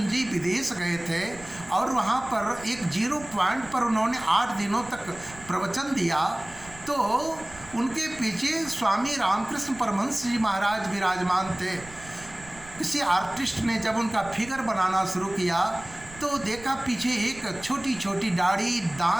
जी विदेश गए थे और वहाँ पर एक 0 पॉइंट पर उन्होंने 8 दिनों तक प्रवचन दिया, तो उनके पीछे स्वामी रामकृष्ण परमहंस जी महाराज विराजमान थे। किसी आर्टिस्ट ने जब उनका फिगर बनाना शुरू किया तो देखा पीछे एक छोटी छोटी दाढ़ी,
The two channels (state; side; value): noise; right; rumble, 19 dB below the sound